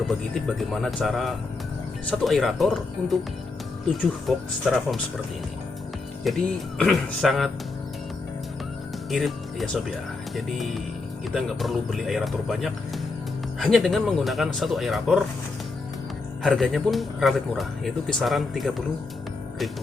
tip bagaimana cara satu aerator untuk 7 box styrofoam seperti ini. Jadi sangat irit ya Sob ya. Jadi kita nggak perlu beli aerator banyak, hanya dengan menggunakan satu aerator. Harganya pun relatif murah, yaitu kisaran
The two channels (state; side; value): quieter; right; 3.8 dB